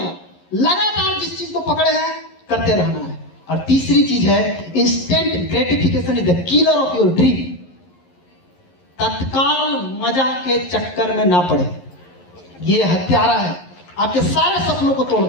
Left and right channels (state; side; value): late; right; 11 ms